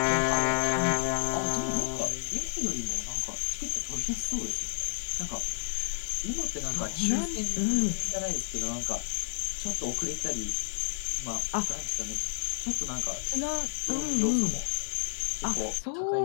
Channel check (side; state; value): right; silent; 57 dB below the other